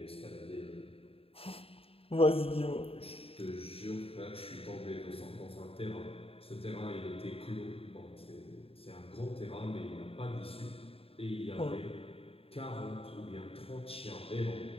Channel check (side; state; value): right; late; 0.28 ms